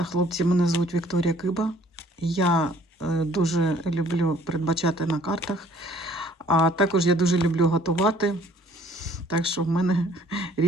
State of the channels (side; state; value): both; normal; correlation 0.58